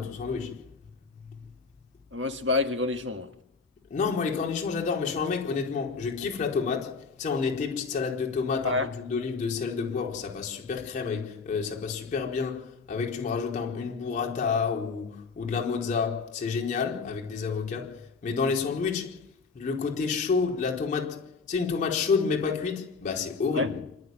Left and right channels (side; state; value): right; quieter; 4.8 dB